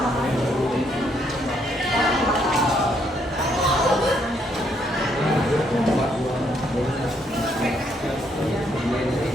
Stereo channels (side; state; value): both; normal; correlation 0.72